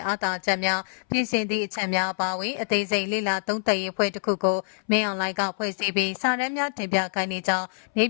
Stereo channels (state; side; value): silent; right; 61 dB below the other